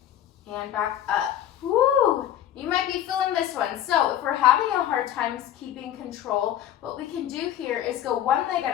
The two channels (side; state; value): right; quieter; 11.3 dB